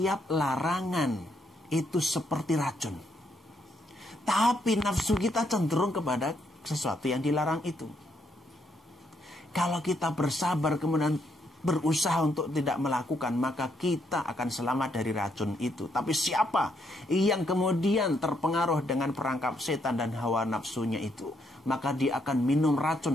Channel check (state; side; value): normal; both; correlation 0.75